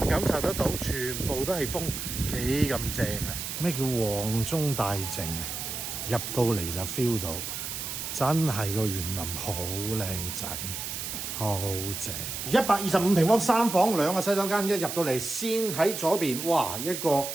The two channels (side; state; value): right; noise; hiss, 5 dB below the sound